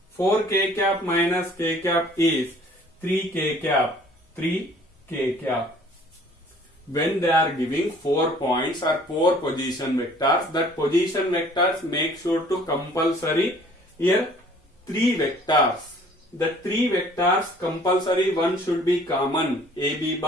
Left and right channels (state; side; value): normal; both; correlation 0.54